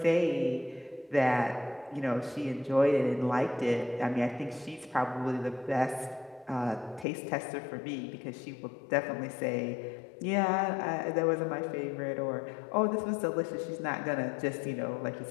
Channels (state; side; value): drops out; right; at 7.1 s